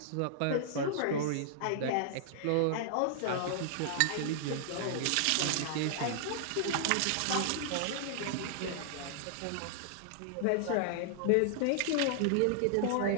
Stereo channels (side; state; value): both; different; correlation -0.01